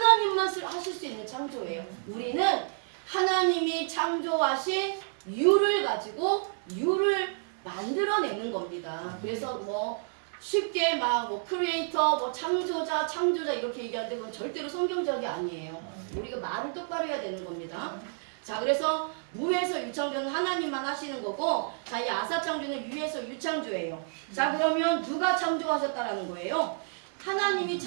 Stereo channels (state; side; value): silent; left; digital silence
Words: 하실 수 있는 창조예요. 우리는 하나님이 창조하신 유를 가지고 유를 만들어내는 겁니다. 그래서 뭐 쉽게 막 뭐 크리에이터, 뭐 창조자 이렇게 얘기하는데 그건 절대로 성경적이 아니에요. 우리가 말을 똑바로 해야 되는 겁니다. 자, 그래서 무에서 유창조는 하나님만 하시는 거고, 자, 이 아사창조는 유에서 유창조예요. 자, 그러면 누가 창조하셨다라는 거예요? 하나님이